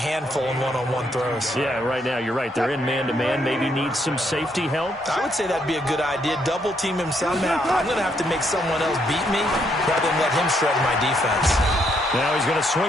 in one-on-one throws. Yeah, right now, you're right. They're in man-to-man. Maybe needs some safety help. I would say that'd be a good idea. Double team him somehow. I'm going to have to make someone else beat me rather than let him shred my defense. Now he's going to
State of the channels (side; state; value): both; normal; correlation 0.73